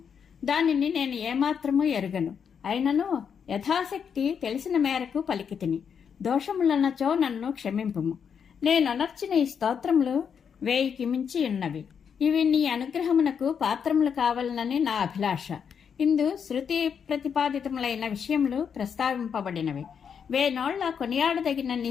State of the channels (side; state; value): right; quieter; 7.1 dB